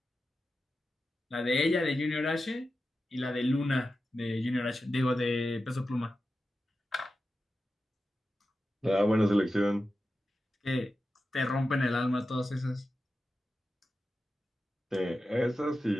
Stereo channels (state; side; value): normal; both; correlation 0.92